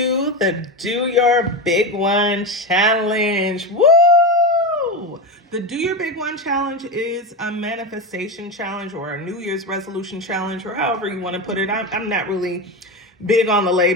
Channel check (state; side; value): normal; both; correlation 0.18